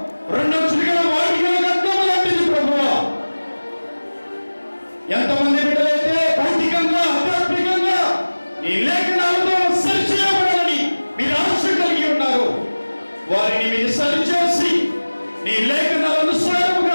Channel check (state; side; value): inverted; both; correlation -1.00